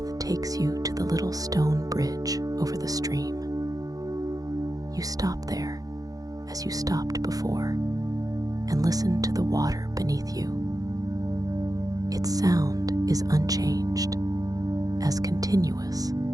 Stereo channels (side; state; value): left; late; 0.17 ms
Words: takes you to the little stone bridge over the stream. You stop there, as you stopped before, and listen to the water beneath you. Its sound is unchanged, as continuous